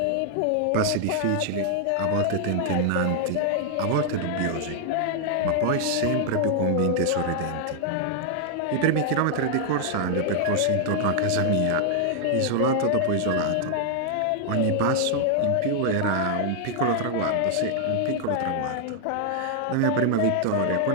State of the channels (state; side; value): different; both; correlation -0.01